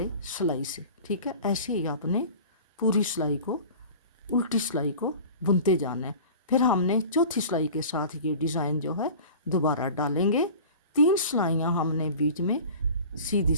सिलाई से। ठीक है, ऐसे ही आपने पूरी सिलाई को, उल्टी सिलाई को बुनते जाना है। फिर हमने चौथी सिलाई के साथ ये डिज़ाइन जो है दोबारा डालेंगे। 3 सिलाइयाँ हमने बीच में सीधी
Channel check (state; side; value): inverted; both; correlation -0.39